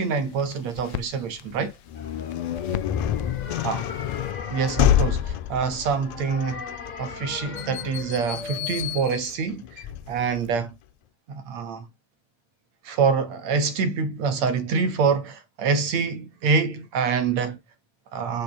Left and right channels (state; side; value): late; left; 8.7 ms